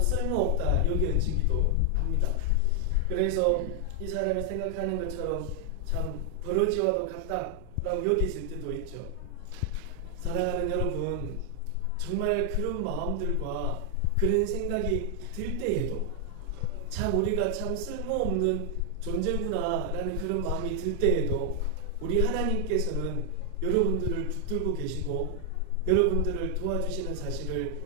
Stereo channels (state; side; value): different; both; correlation 0.00